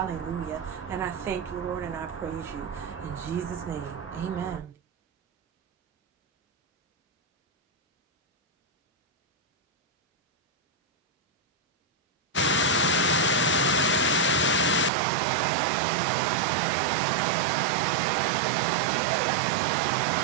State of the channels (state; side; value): drops out; left; at 14.9 s